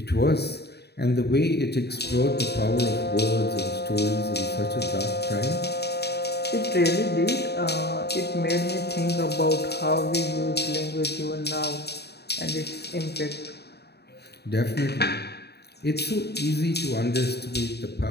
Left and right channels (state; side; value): late; right; 0.48 ms